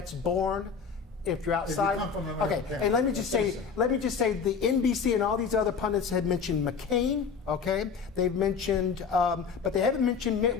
born. If you're outside, come from an American okay. parent, And let me that's just say, the NBC and all these other pundits had mentioned McCain. Okay, they've mentioned, but they haven't mentioned Mitt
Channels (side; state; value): right; quieter; 5.9 dB